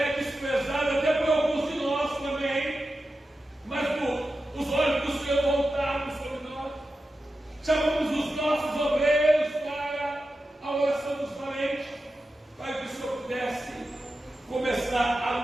desprezada até por alguns de nós também, mas os olhos do Senhor voltados sobre nós. Chamamos os nossos obreiros para a oração dos valentes, para que o Senhor pudesse começar a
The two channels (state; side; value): normal; both; correlation 0.91